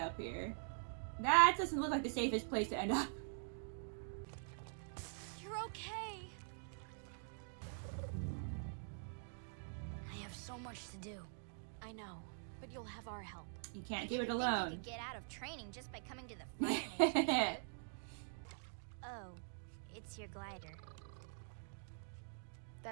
here? That doesn't look like the safest place to end up. You're okay. I have so much to do. I know, but you'll have our help. You can't do it You alone. could get out of training just by coming to the Fire Nation. Oh, it's your glider.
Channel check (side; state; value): left; silent; digital silence